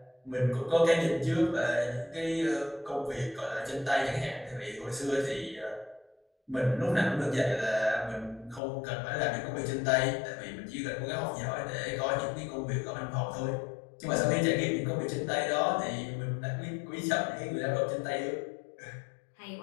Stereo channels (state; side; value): drops out; right; at 8.6 s